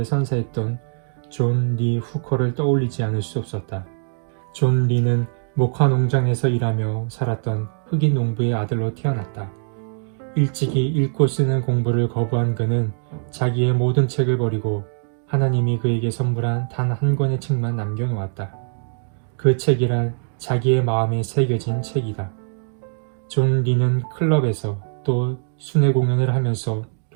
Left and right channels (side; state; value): left; silent; 58 dB below the other